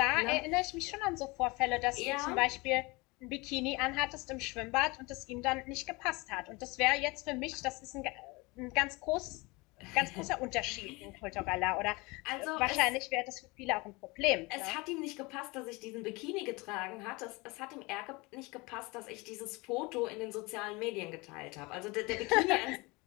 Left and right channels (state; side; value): quieter; right; 25.0 dB